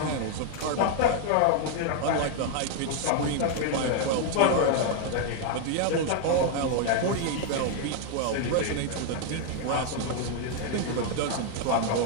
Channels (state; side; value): different; both; correlation 0.00